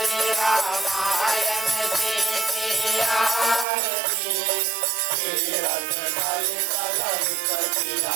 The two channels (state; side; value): drops out; left; at 3.7 s